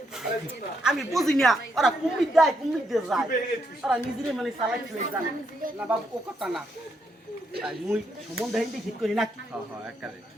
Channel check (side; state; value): both; normal; correlation 0.78